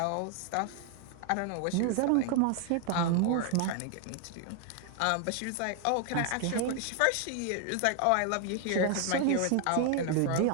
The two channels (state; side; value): different; both; correlation 0.00